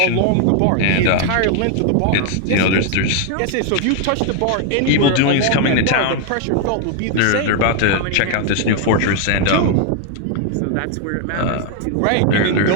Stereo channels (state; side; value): different; both; correlation 0.00